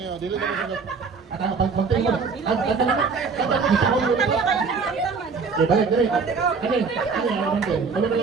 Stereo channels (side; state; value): left; quieter; 5.0 dB